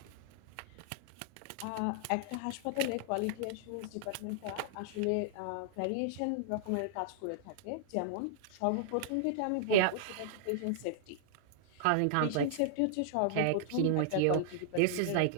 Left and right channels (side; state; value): both; different; correlation -0.01